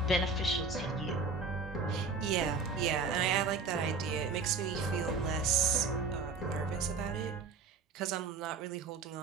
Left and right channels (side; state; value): left; quieter; 4.4 dB